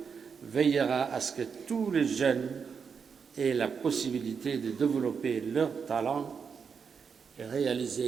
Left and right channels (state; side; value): quieter; left; 6.2 dB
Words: veillera à ce que tous les jeunes aient la possibilité de développer leurs talents et